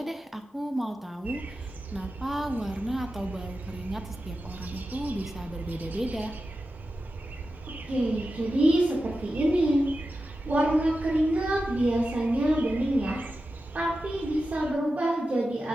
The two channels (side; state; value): both; normal; correlation 0.92